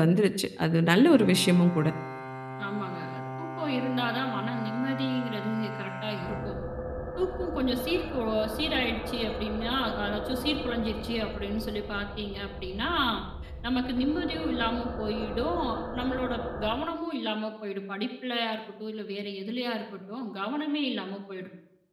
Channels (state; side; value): identical; both; correlation 1.00